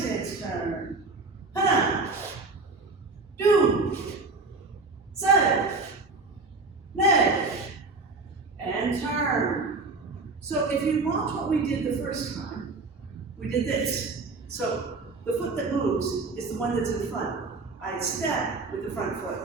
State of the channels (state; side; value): quieter; left; 3.8 dB